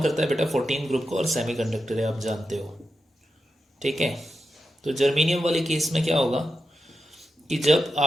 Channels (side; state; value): both; normal; correlation 0.88